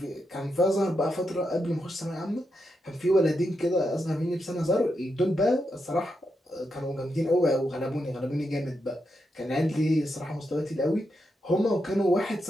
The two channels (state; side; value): normal; both; correlation 0.84